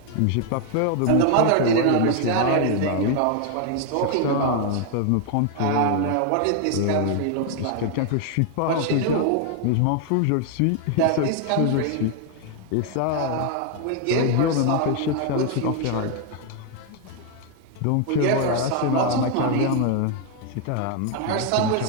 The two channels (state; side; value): different; both; correlation 0.01